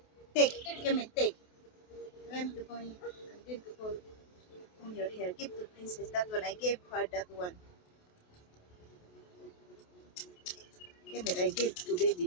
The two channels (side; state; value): right; late; 28 ms